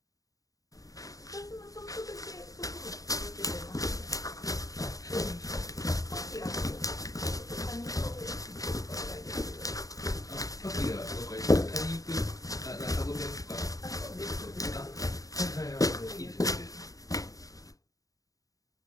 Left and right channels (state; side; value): late; right; 0.17 ms